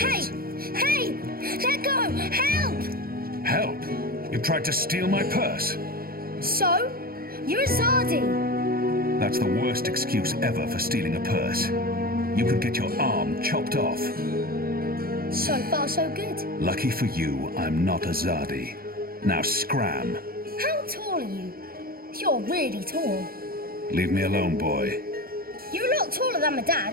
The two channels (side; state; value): left; late; 0.43 ms